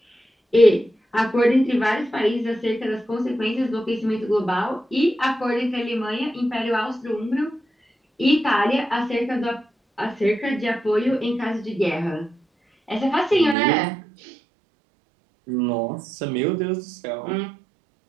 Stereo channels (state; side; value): drops out; left; at 13.6 s